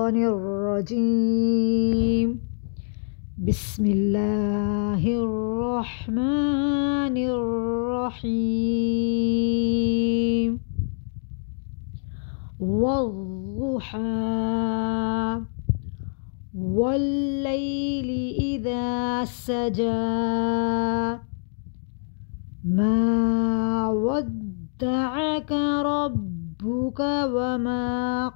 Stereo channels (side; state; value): right; silent; digital silence